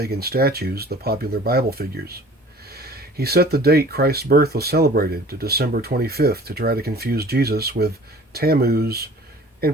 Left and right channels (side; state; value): both; normal; correlation 0.48